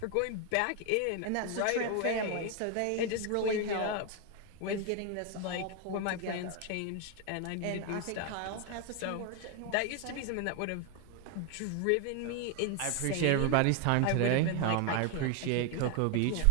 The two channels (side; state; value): both; different; correlation 0.01